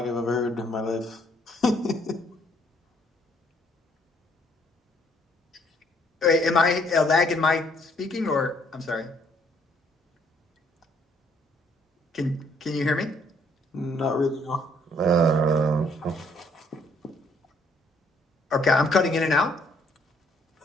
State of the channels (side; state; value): both; normal; correlation 0.66